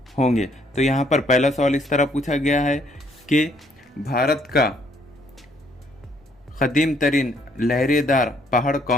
होंगे। तो यहाँ पर पहला सवाल इस तरह पूछा गया है कि भारत का कदीम तरीन लहरेदार पहाड़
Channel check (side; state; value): both; normal; correlation 0.67